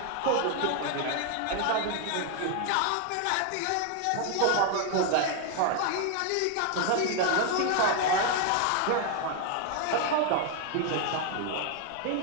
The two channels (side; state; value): both; different; correlation 0.00